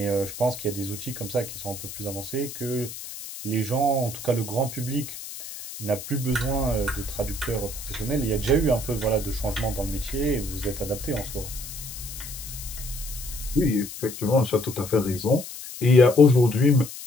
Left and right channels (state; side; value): noise; left; hiss, 11 dB below the sound